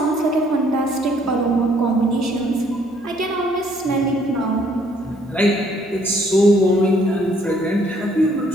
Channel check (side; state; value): both; normal; correlation 0.64